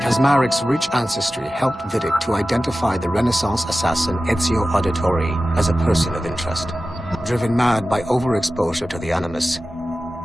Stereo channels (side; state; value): both; normal; correlation 0.95